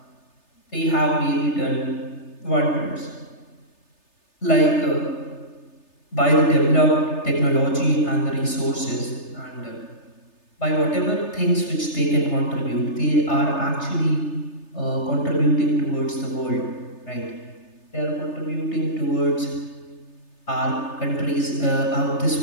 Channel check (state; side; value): late; right; 3.3 ms